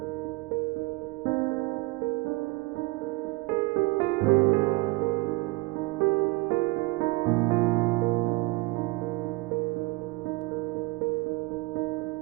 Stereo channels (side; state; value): left; quieter; 23.2 dB